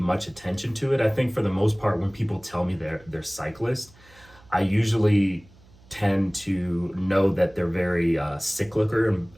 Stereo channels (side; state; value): right; noise; hum, 26 dB below the sound